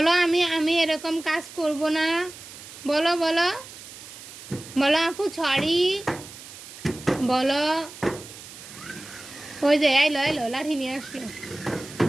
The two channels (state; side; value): noise; right; hiss, 16 dB below the sound